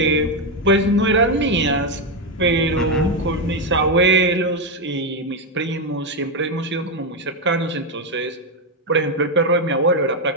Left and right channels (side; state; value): both; normal; correlation 0.06